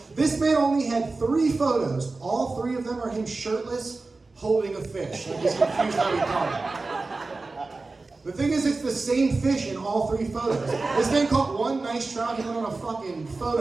this man only had 3 photos. All 3 of them are him shirtless, holding a fish. I'm just confused how he caught it. The thing is, it's the same fish in all 3 photos. This man caught one nice trout, he went on a fucking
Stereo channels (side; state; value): left; quieter; 3.6 dB